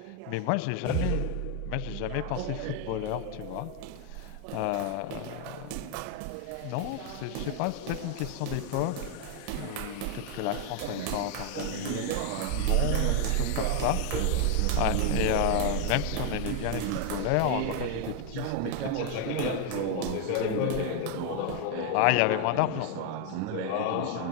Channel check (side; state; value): both; different; correlation 0.00